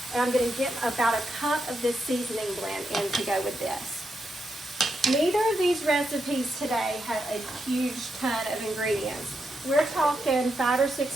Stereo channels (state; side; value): normal; both; correlation 0.84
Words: and I'm going to get about a cup of this seasoning blend in to go with this. Neither of these recipes today have a huge ton of ingredients. We're talking 5 or